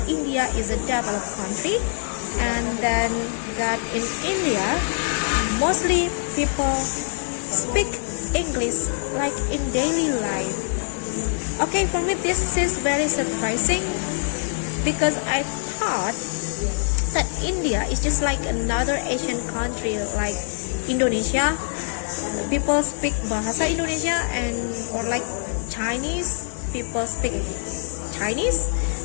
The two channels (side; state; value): right; silent; digital silence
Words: India is a developed country, and then that in India mostly people speak English like in daily life. Okay, for me this is very surprising because I thought that India is just like another Asian country like Indonesia. People speak bahasa Indonesia, and or like Chinese, people speak Chinese,